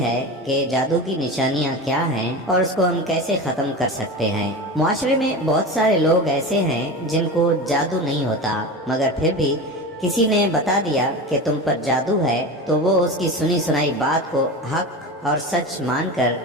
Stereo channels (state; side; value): normal; both; correlation 0.27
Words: کہ جادو کی نشانیاں کیا ہیں اور اس کو ہم کیسے ختم کر سکتے ہیں۔ معاشرے میں بہت سارے لوگ ایسے ہیں جن کو جادو نہیں ہوتا، مگر پھر بھی کسی نے بتا دیا کہ تم پر جادو ہے تو وہ اس کی سنی سنائی بات کو حق اور سچ مان کر